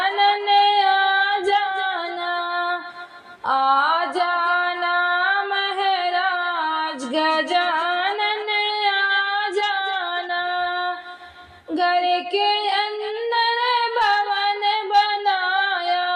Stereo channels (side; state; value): both; identical; correlation 1.00